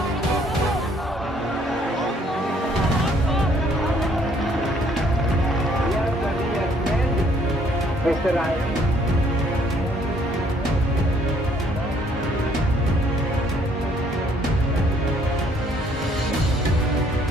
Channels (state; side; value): normal; both; correlation 0.64